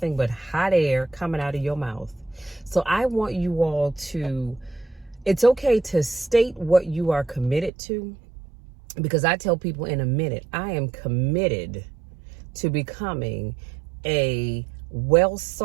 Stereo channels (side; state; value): left; drops out; at 7.7 s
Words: but hot air coming out of your mouth. So I want you all to, it's okay to state what you are committed to, because I tell people in a minute, I am committed to becoming a well